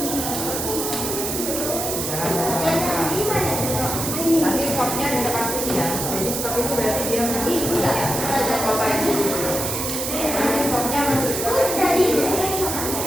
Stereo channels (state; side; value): noise; right; hiss, 3 dB below the sound